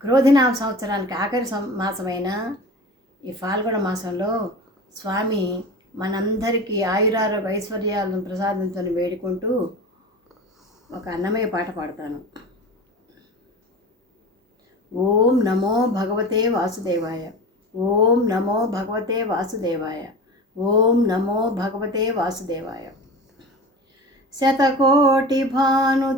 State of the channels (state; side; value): normal; both; correlation 0.33